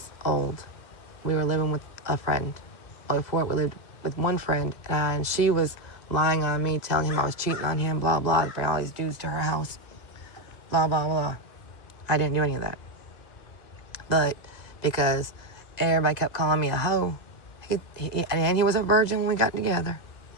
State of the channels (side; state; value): right; late; 2.0 ms